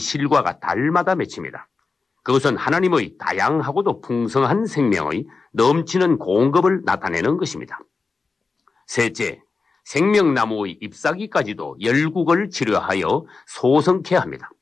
달마다 맺힙니다. 그것은 하나님의 다양하고도 풍성한 생명의 넘치는 공급을 나타내는 것입니다. 셋째, 생명나무의 잎사귀까지도 열국을 치료하여 소성케 합니다.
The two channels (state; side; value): quieter; right; 4.3 dB